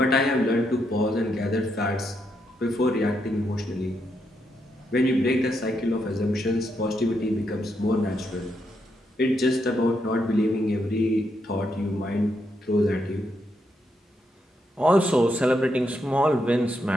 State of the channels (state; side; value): normal; both; correlation 0.80